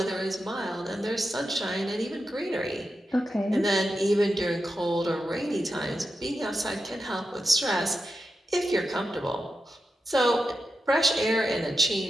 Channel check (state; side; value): normal; both; correlation 0.89